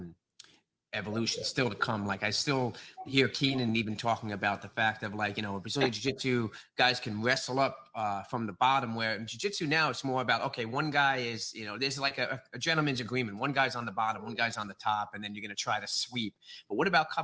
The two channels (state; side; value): identical; both; correlation 1.00